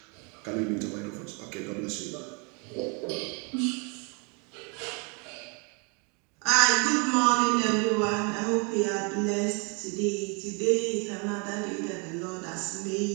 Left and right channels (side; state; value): left; quieter; 33.8 dB